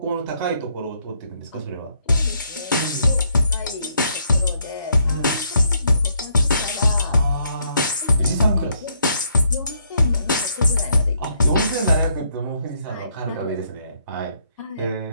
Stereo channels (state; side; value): inverted; both; correlation -0.72